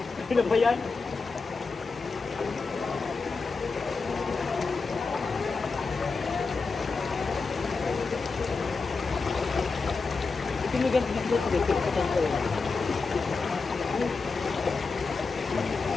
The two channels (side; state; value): right; quieter; 4.4 dB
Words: Ano ba yan? Tinigan dito ko dito sa kanto.